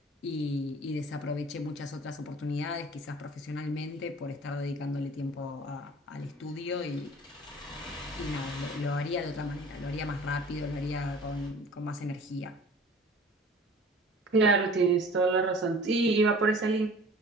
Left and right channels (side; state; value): both; normal; correlation 0.46